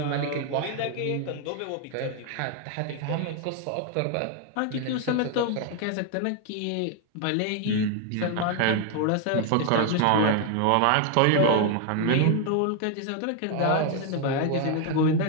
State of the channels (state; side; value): different; both; correlation 0.01